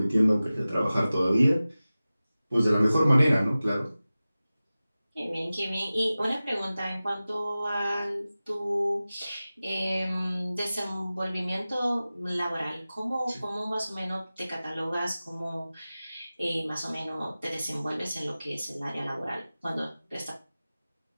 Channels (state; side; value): inverted; both; correlation -0.96